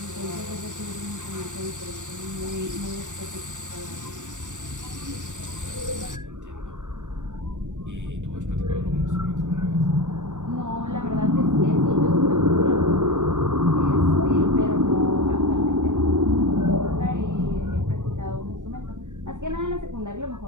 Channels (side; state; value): left; late; 0.85 ms